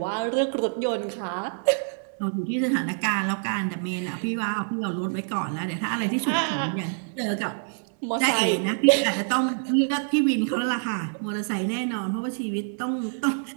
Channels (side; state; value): left; silent; 61 dB below the other